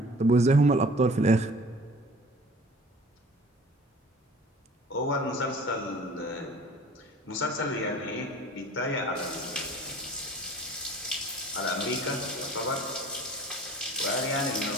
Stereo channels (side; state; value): both; normal; correlation 0.46